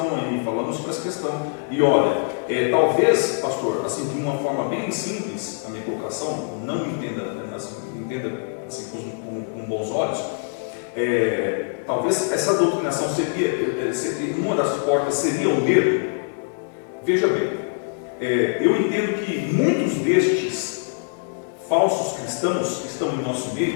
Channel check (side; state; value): right; silent; 63 dB below the other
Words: aí, falamos sobre essa questão. E olha, talvez, pastor, assim, de uma forma bem simples, a minha colocação, não me entenda, entenda assim, com bons olhos, talvez essa doutrinação seria, uma das portas seria o medo. Veja bem, eu entendo que muitos destes falsos cristãos que estão em nosso